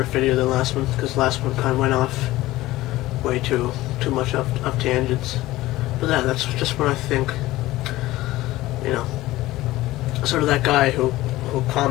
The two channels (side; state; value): right; quieter; 17.3 dB